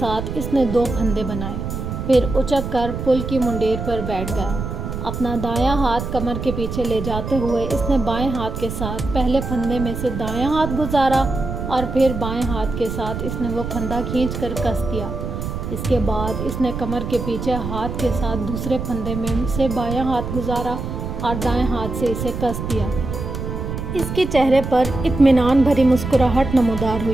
اس نے 2 پھندے بنائے، پھر اچک کر پل کی منڈیر پر بیٹھ گیا۔ اپنا دایاں ہاتھ کمر کے پیچھے لے جاتے ہوئے اس نے بائیں ہاتھ کے ساتھ پہلے پھندے میں سے دایاں ہاتھ گزارا، اور پھر بائیں ہاتھ کے ساتھ اس نے وہ پھندا کھینچ کر کس دیا۔ اس کے بعد اس نے کمر کے پیچھے ہاتھ کے ساتھ دوسرے پھندے میں سے بایاں ہاتھ گزارا اور دائیں ہاتھ سے اسے کس دیا۔ اس کے چہرے پر اطمینان بھری مسکراہٹ نمودار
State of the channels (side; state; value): right; noise; rumble, 5 dB below the sound